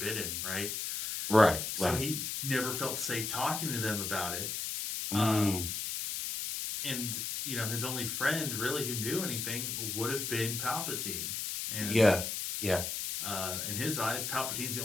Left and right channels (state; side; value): noise; left; hiss, 3 dB below the sound